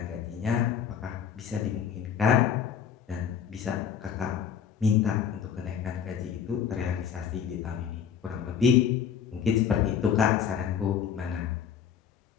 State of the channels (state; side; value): quieter; right; 7.8 dB